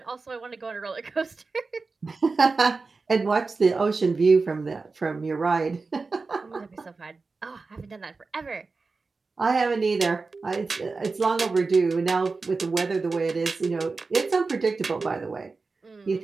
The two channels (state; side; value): quieter; left; 4.1 dB